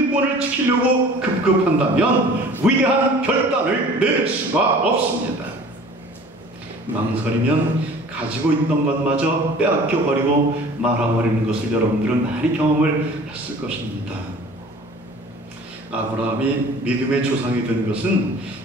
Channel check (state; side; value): normal; both; correlation 0.46